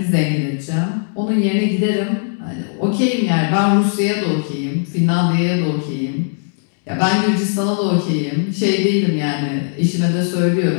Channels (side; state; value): right; silent; 67 dB below the other